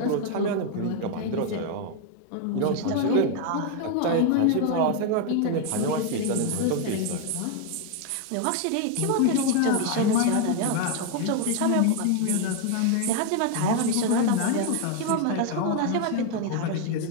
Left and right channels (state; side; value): different; both; correlation 0.01